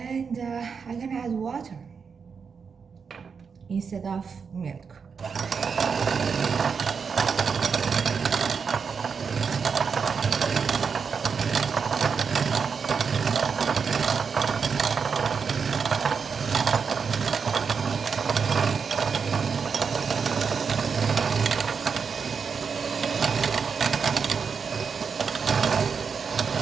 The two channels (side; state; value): left; quieter; 5.9 dB